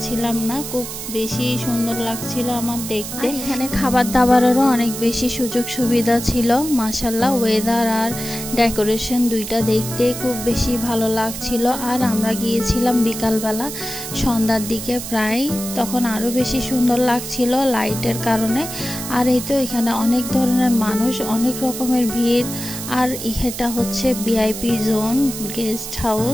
না, খুব বেশি সুন্দর লাগছিল আমার দেখতে। এখানে খাবার দাবারেরও অনেক বেশি সুযোগ সুবিধা ছিল মাশাআল্লাহ। ওয়েদার আর ডেকোরেশন দুইটা দেখতে খুব বেশি ভালো লাগছিল। আর আমরা গিয়েছিলাম বিকালবেলা, সন্ধ্যার দিকে প্রায়, তখন আরও বেশি সুন্দর লাগছিল লাইটের কারণে। আর এই তো এখানে অনেক ধরনের মানুষ, অনেক রকমের ভিড়। আর এটা হচ্ছে ভিআইপি জোন, গেস্ট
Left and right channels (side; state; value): right; noise; hiss, 8 dB below the sound